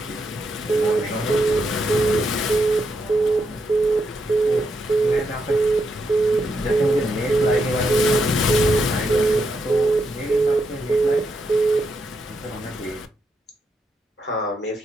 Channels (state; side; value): normal; both; correlation 0.81